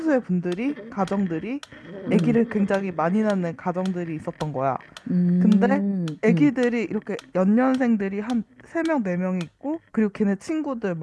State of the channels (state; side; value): identical; both; correlation 1.00